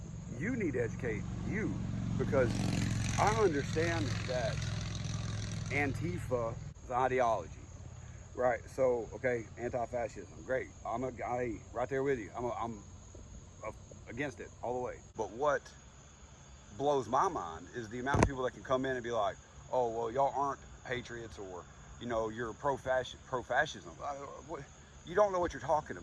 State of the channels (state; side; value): identical; both; correlation 1.00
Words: you need to educate you, because I understand that Antifa is ideology, right? So, okay, anti-fascism, great. I'm a guy right there with you. I'm against it all the way. But what blows my mind is the amount of people that can come in and be like, oh, well, y'all aren't patriots, or, you know, you're pro-fascism. You don't know what you're talking